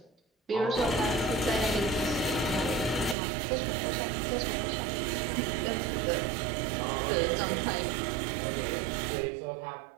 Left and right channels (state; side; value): drops out; left; at 3.2 s